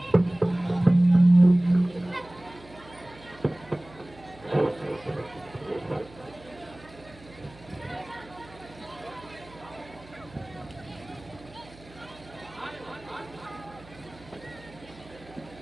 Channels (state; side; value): noise; right; hum, 22 dB below the sound